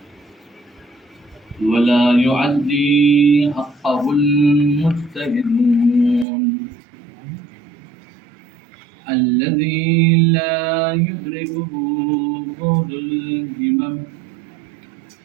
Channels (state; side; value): drops out; left; at 6.2 s